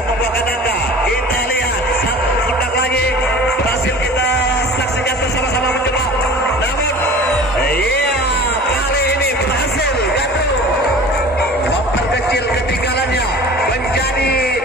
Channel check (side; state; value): both; normal; correlation 0.41